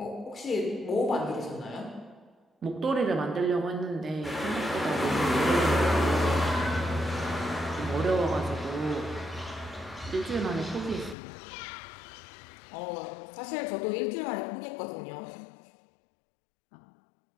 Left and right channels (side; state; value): right; drops out; at 11.2 s